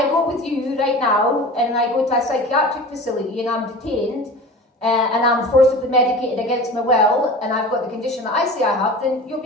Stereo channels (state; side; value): normal; both; correlation 0.36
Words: go with you right now, and I go to a psychiatric facility, and I'm detained, and I'm forcibly medicated against my will, and I've got the condition that I say I have, then you'll